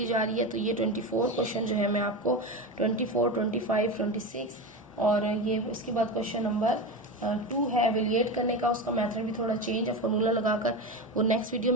जा रही है, तो ये 24 क्वेश्चन जो है मैं आपको 24, 25, 26 और ये इसके बाद क्वेश्चन नंबर 2 है एवेल्यूएट करने का, उसका मेथड भी थोड़ा चेंज है फॉर्मूला लगाकर, वो नेक्स्ट वीडियो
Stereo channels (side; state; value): both; normal; correlation 0.21